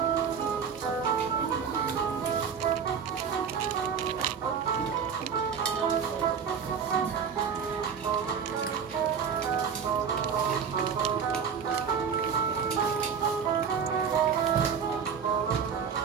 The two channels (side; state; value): left; quieter; 6.8 dB